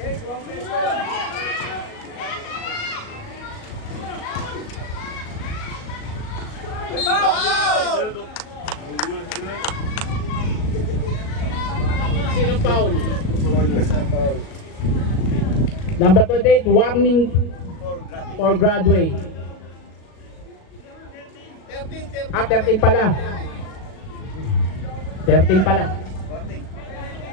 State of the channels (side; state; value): right; late; 38 ms